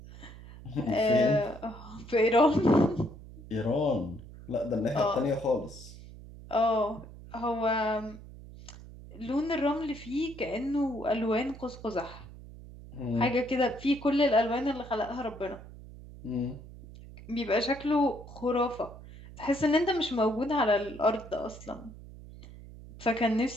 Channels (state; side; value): noise; right; hum, 16 dB below the sound